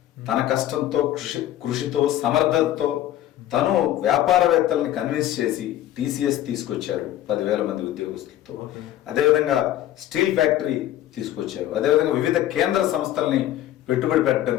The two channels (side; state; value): right; quieter; 13.0 dB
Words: తన కష్టంతో, కృషితో, సమర్థతతో తను వ్యాపారవేత్తల్ని కన్విన్స్ చేసి TCS తీసుకొచ్చారు 10,000 మంది ఉద్యోగస్తులతో. అదేవిధంగా స్టీల్ ఫ్యాక్టరీ తీసుకొచ్చారు. అదేవిధంగా వివిధ కేంద్ర సంస్థల్ని పెట్టుబడి పెట్టడం